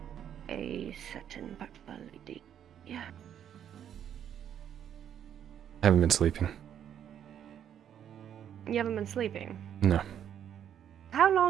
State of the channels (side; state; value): left; quieter; 9.5 dB